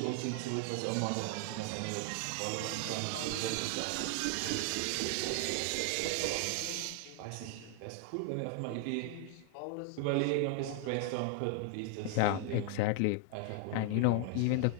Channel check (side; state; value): both; different; correlation 0.00